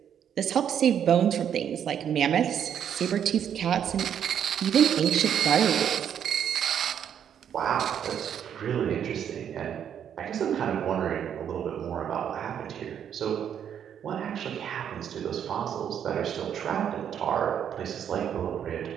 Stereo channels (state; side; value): quieter; left; 8.9 dB